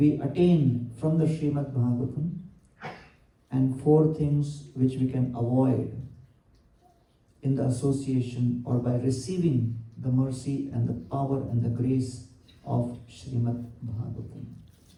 attain from the Srimad Bhagavatam and 4 things which we can avoid in the association or by receiving the mercy and the power and the grace of Srimad Bhagavatam.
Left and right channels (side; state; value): both; identical; correlation 1.00